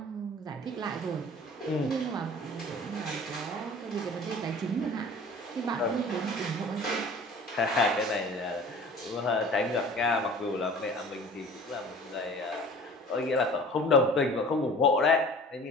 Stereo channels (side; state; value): both; normal; correlation 0.44